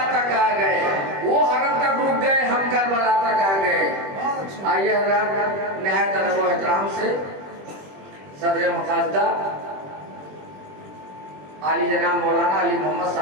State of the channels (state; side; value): late; left; 21 ms